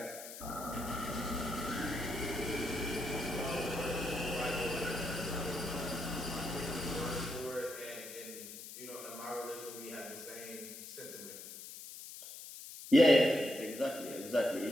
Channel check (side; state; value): left; noise; hiss, 12 dB below the sound